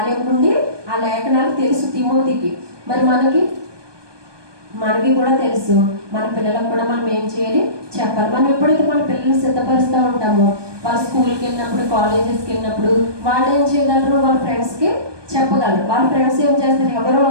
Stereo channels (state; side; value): late; left; 1.2 ms